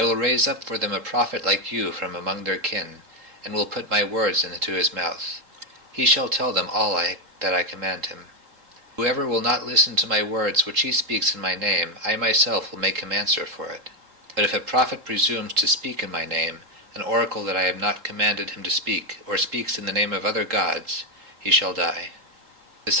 will raise up for them a prophet like you from among their kin, and will put my words into his mouth. He shall tell them all that I command him. Whoever will not listen to my words which he speaks in my name, I myself will make him answer for it. But if a prophet presumes to speak in my name, an oracle that I have not commanded him to speak, or speaks in the name of other gods, he shall die." The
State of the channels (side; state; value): left; late; 3.7 ms